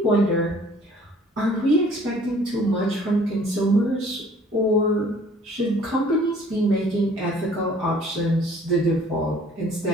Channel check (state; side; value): normal; both; correlation 0.54